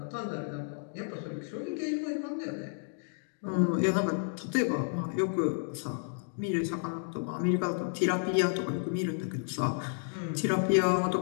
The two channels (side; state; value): right; silent; digital silence